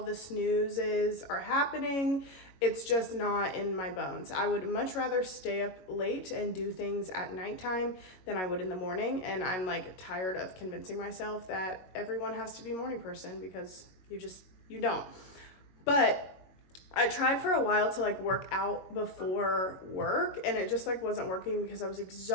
the snoozes are happening. It's just not in my bones. I would much rather stay up late and do things at nighttime than I would in the morning. And I'm like tired of convincing myself that everyone has to be a morning person, because you don't. But I tried for a while to like work out before work, and it just like wasn't working because I was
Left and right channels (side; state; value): right; late; 22 ms